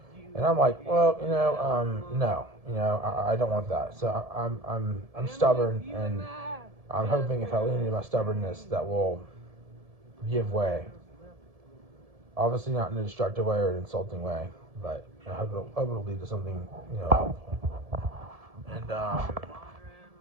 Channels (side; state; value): left; late; 1.7 ms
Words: And I'm like, well, no, I don't want that. So I'm stubborn, and I'm hoping if I lean into my stubbornness, that will give way. Obviously, not in a destructive way or an insulting way, but I hope it'll lead to something, helpful. And